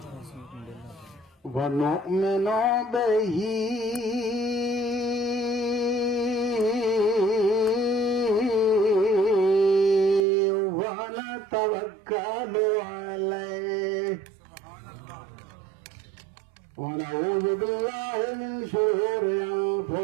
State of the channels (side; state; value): left; drops out; at 10.2 s